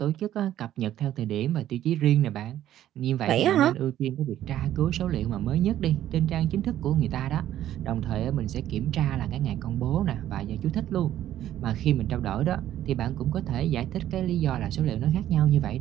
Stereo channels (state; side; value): quieter; left; 12.2 dB